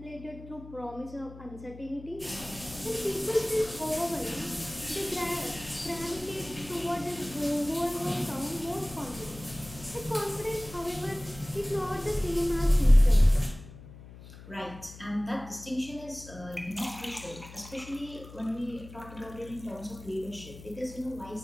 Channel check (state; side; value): noise; left; hum, 16 dB below the sound